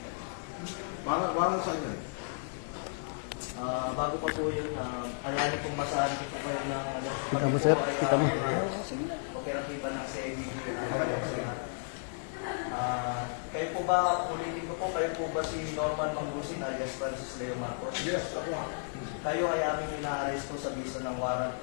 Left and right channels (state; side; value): silent; right; digital silence